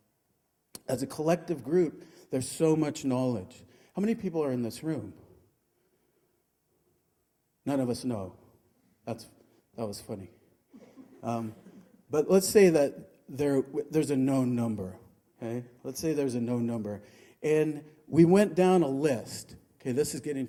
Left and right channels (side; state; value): both; identical; correlation 1.00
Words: As a collective group, there's so much knowledge. How many people are in this room? None of us know. That was funny. But let's say that there's a known number. Okay? Let's say there's a known number. And we went down a list. Okay, this is getting